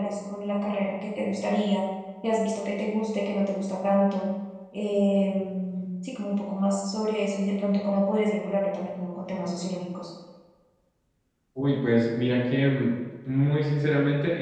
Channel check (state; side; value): identical; both; correlation 1.00